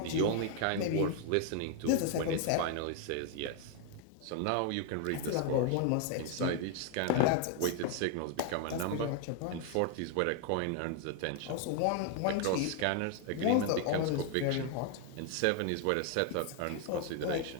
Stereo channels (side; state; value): both; different; correlation 0.00